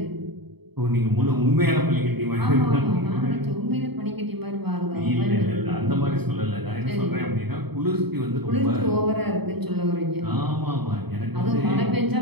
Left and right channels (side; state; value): left; late; 0.98 ms